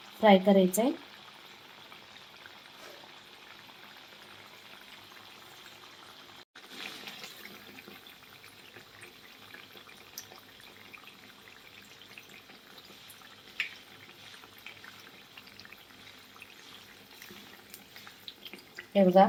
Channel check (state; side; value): identical; both; correlation 1.00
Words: फ्राय करायचं आहे. हे बघा,